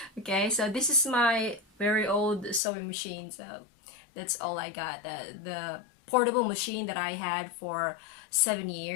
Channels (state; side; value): drops out; right; at 2.6 s